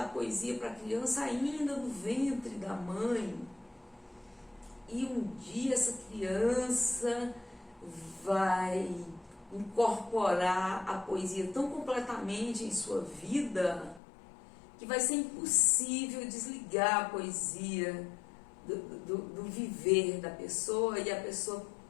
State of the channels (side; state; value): right; drops out; at 14.0 s